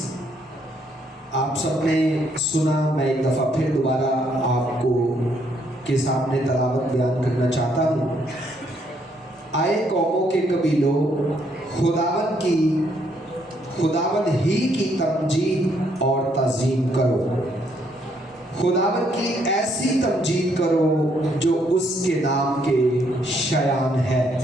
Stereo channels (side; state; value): both; normal; correlation 0.71